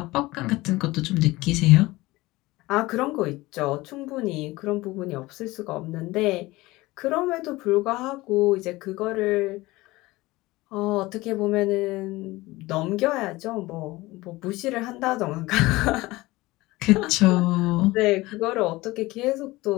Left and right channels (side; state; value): right; quieter; 20.0 dB